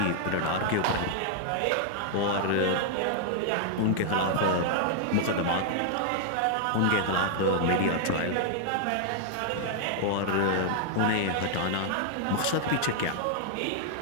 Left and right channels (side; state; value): both; different; correlation -0.01